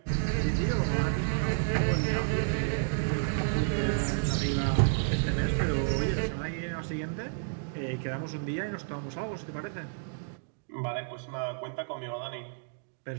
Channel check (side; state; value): left; silent; digital silence